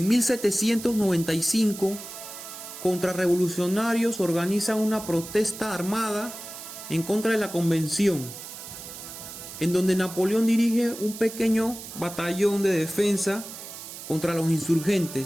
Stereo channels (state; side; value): noise; right; hiss, 12 dB below the sound